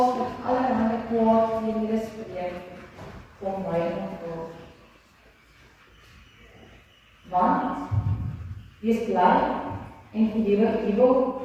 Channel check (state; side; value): identical; both; correlation 1.00